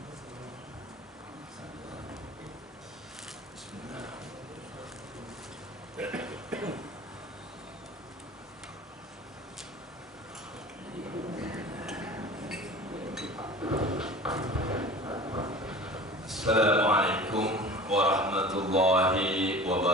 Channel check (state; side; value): normal; both; correlation 0.39